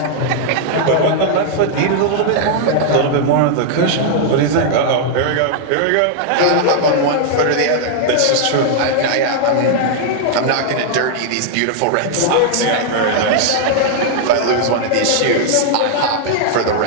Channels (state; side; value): different; both; correlation -0.01